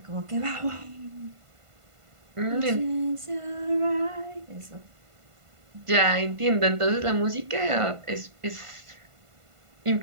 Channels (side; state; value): left; late; 1.5 ms